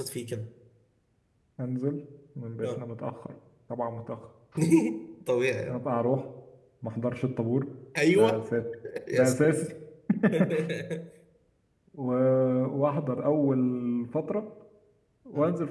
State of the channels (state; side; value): identical; both; correlation 1.00